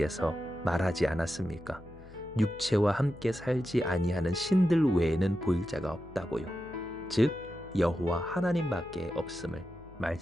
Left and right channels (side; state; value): left; noise; hum, 20 dB below the sound